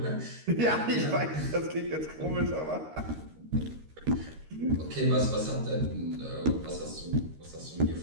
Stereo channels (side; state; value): left; late; 13 ms